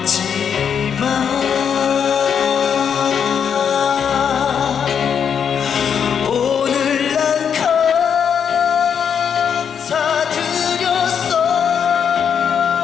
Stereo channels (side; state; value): right; quieter; 7.6 dB